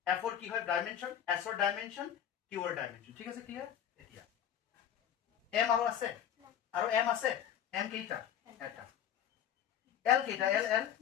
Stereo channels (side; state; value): right; quieter; 9.5 dB